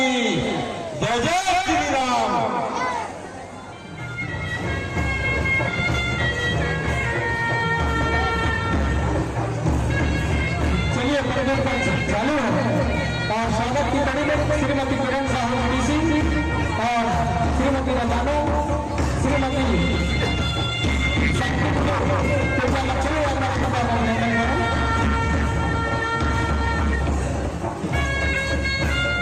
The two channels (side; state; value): both; identical; correlation 1.00